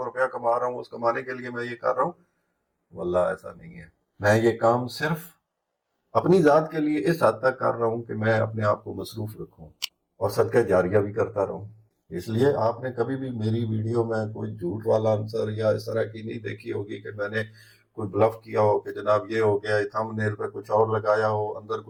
روپیہ کما رہا ہوں، اس کمانے کے لیے میں یہ کر رہا ہوں۔ واللہ ایسا نہیں ہے، میں یہ کام صرف اپنی ذات کے لیے اس حد تک کر رہا ہوں کہ میں اپنے آپ کو مصروف رکھوں اور صدقہ جاریہ بھی کرتا رہوں۔ اس لیے آپ نے کبھی بھی میری ویڈیو میں کوئی جھوٹ والا عنصر یا اس طرح کی نہیں دیکھی ہوگی کہ میں نے کوئی بلف کیا ہو کہ جناب یہ ہو گیا، تھم نیل پہ کچھ اور لگایا ہو، اندر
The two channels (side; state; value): both; identical; correlation 1.00